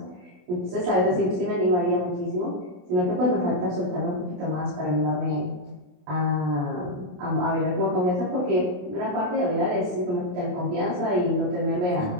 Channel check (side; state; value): left; late; 28 ms